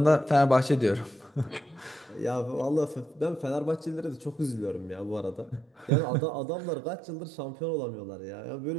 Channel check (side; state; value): left; drops out; at 5.9 s